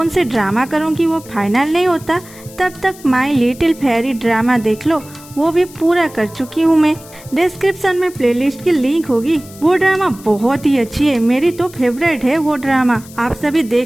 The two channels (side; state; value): left; noise; hiss, 20 dB below the sound